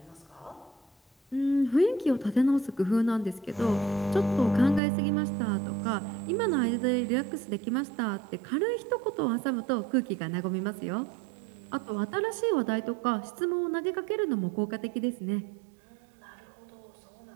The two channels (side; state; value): left; drops out; at 4.8 s